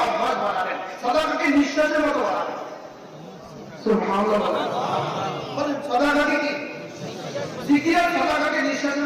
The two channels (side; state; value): both; identical; correlation 1.00